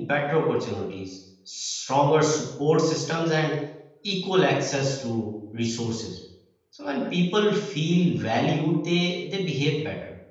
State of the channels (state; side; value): identical; both; correlation 1.00